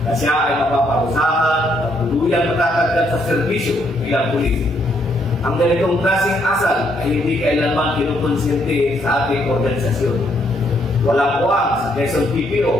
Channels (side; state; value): both; normal; correlation 0.72